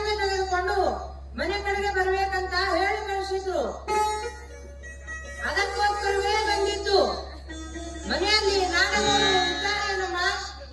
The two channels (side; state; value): both; identical; correlation 1.00